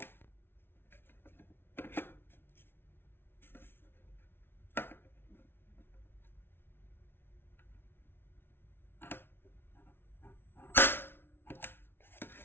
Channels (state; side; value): late; right; 0.11 ms